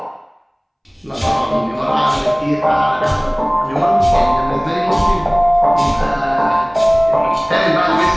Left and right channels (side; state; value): both; identical; correlation 1.00